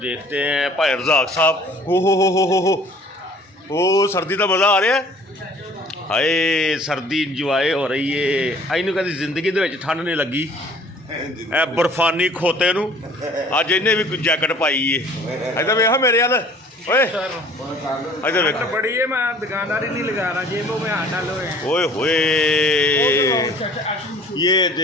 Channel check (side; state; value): both; normal; correlation 0.52